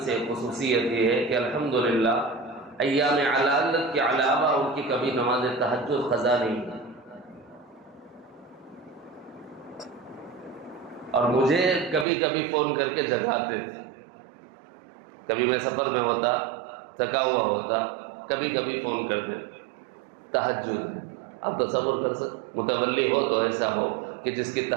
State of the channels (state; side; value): drops out; left; at 12.1 s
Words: سے خصوصیت یہ ہے کہ الحمدللہ ایام علالت کے علاوہ ان کی کبھی نماز تہجد قضا نہیں ہے، اور مجھے کبھی کبھی فون کر کے جگاتے تھے۔ کبھی میں سفر میں ہوتا، تھکا ہوا ہوتا، کبھی کبھی فون کرتے تہجد۔ آپ تصور کر سکتے متولی ہو تو ایسا ہو کہ جس کی